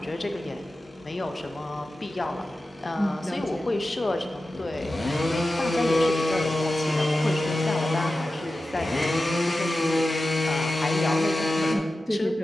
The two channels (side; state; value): both; normal; correlation 0.93